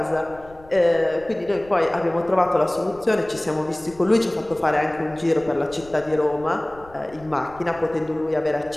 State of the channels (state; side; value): noise; left; rumble, 23 dB below the sound